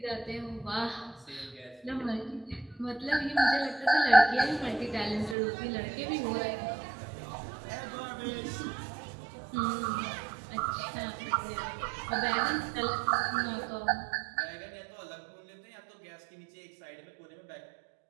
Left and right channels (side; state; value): left; drops out; at 5.4 s